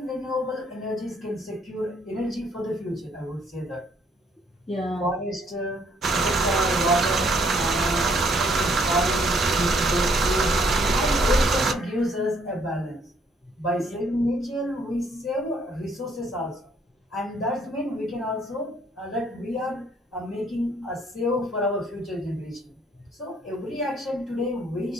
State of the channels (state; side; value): normal; both; correlation 0.66